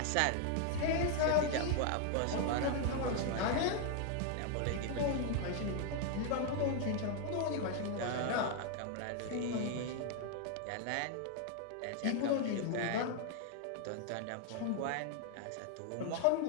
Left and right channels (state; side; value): different; both; correlation 0.00